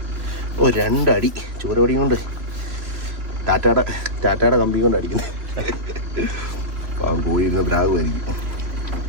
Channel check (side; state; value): left; late; 3.5 ms